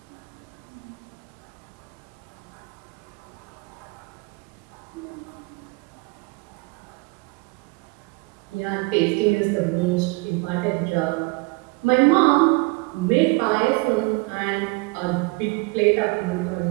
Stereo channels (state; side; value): quieter; left; 27.6 dB